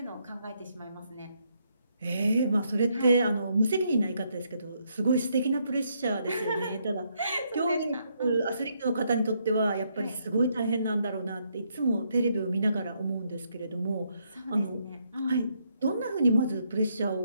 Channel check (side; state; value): both; inverted; correlation -0.75